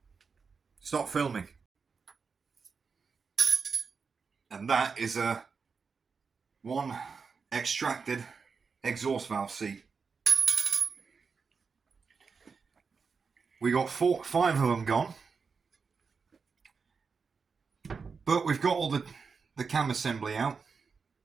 Stop filming. And that is a one extracted exhaust valve seat. We got 5 of them gone. But we've got all the cam assembly out.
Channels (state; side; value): quieter; left; 5.3 dB